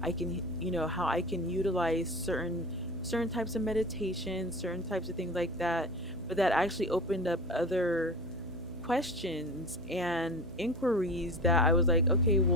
I can utilize certain types of meditation, certain types of things like that, but that actually opened up other questions and inquiries that I was like, okay,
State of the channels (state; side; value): noise; right; hum, 15 dB below the sound